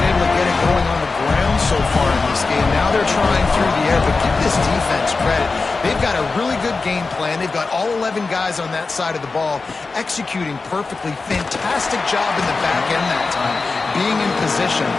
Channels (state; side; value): quieter; right; 4.0 dB